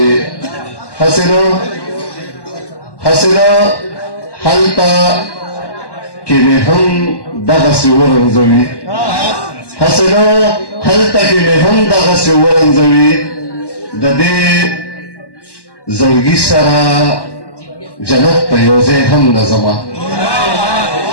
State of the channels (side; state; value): right; late; 1.1 ms